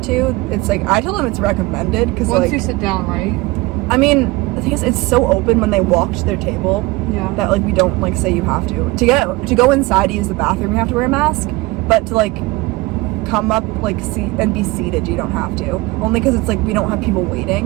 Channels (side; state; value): left; quieter; 21.9 dB